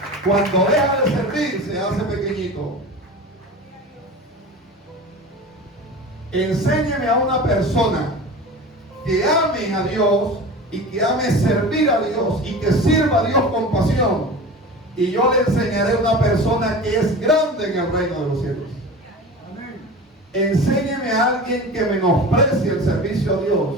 Cuando deja de servir, se hace pequeñito. Enséñeme a una persona que ame a Dios y que ame servir a Dios y que sirva a Dios con pasión, y yo le enseñaré a una persona que es grande en el reino de los cielos. Enséñeme a alguien que menosprecie el servicio a Dios,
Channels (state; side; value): normal; both; correlation 0.34